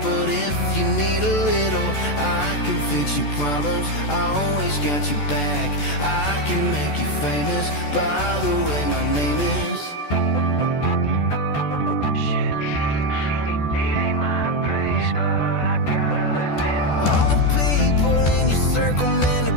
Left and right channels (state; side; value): late; right; 14 ms